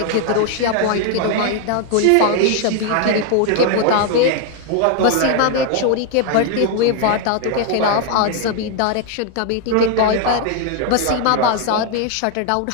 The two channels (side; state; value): both; different; correlation 0.00